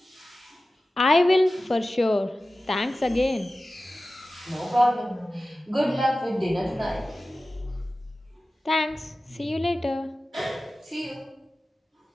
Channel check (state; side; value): normal; both; correlation 0.95